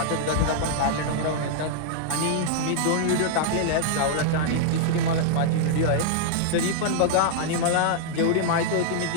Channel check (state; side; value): different; both; correlation -0.01